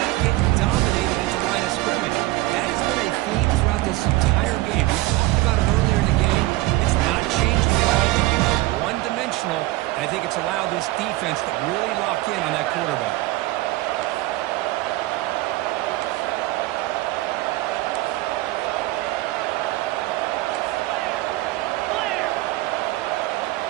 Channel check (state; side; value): quieter; left; 18.8 dB